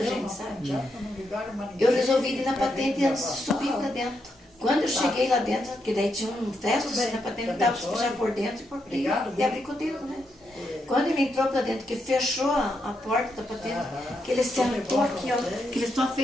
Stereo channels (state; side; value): normal; both; correlation 0.81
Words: gente, sabe? Eu resolvi ir na patente antes de subir para dentro. Quando eu cheguei lá dentro, porque daí tinha um teto assim na patente, eu dava já por dentro e por dentro, e abri com o dedo, né? Quando ele entrou para dentro, que fechou a porta da patente, que ele sentou aqui, ó, que ele só